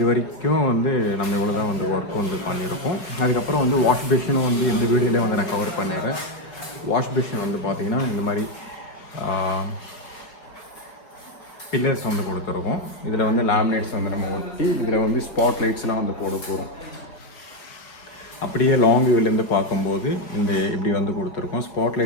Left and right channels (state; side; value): late; right; 5.0 ms